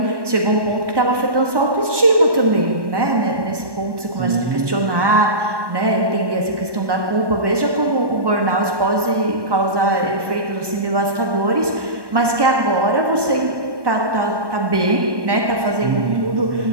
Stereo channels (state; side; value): late; left; 1.2 ms